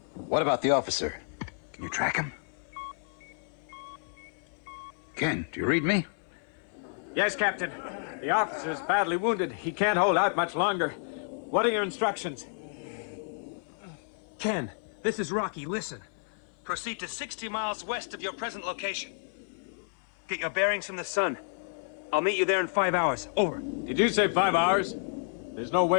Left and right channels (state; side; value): silent; right; 57 dB below the other